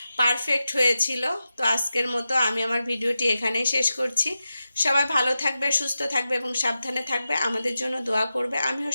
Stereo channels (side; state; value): both; inverted; correlation -0.91